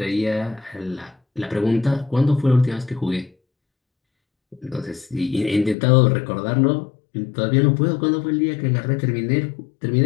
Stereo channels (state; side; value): drops out; right; at 5.8 s